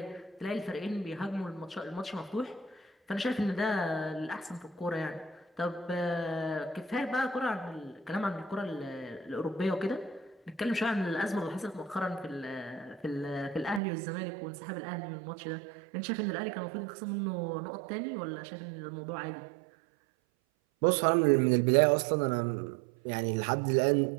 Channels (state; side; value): drops out; left; at 13.8 s